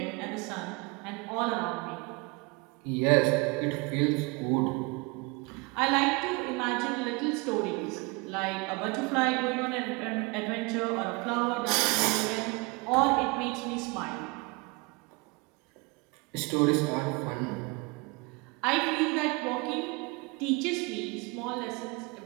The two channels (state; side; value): quieter; left; 27.3 dB